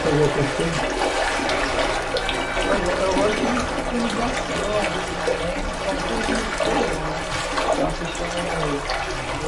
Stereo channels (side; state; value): both; identical; correlation 1.00